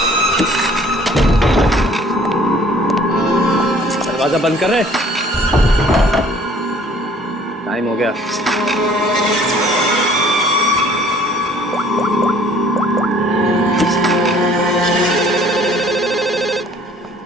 दरवाजा बंद कर रहे। टाइम हो गया।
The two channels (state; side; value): normal; both; correlation 0.55